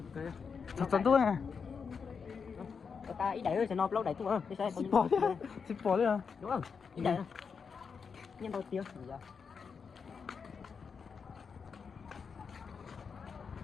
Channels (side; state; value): right; quieter; 5.9 dB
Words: kê. Thật tôi à. Ta ý đẩy rồi sẽ nó lâu đẩy tôi ơi. Xịt bỏ đi à. Đúng không? Ý đẩy. Nhân đầu tiêu.